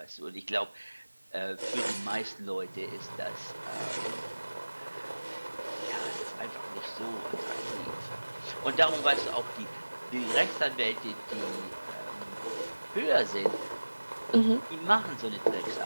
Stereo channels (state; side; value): inverted; both; correlation -1.00